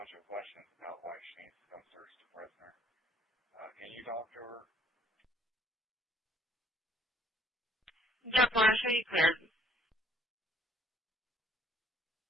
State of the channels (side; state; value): both; normal; correlation 0.61